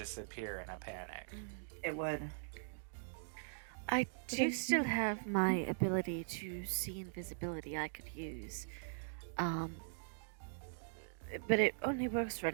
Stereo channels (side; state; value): left; silent; digital silence